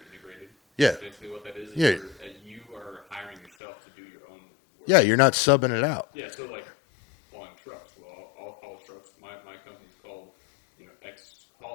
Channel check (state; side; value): drops out; right; at 3.5 s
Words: integrated? Yeah. That's basically what that is where you are hiring yourself to do your own work. Yeah, you're not subbing it out. Yeah, so like hauling trucks. Well, I'll haul trucks. My company's called, X